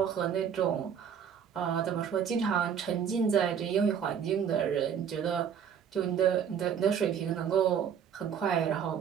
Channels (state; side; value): quieter; left; 7.9 dB